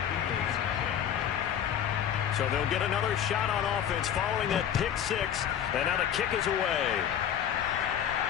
So they'll get another shot on offense following that pick six. And now the kick is away.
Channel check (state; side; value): quieter; right; 9.4 dB